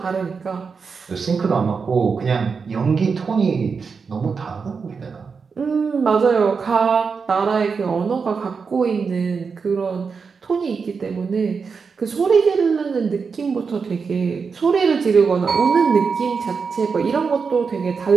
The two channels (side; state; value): left; quieter; 5.4 dB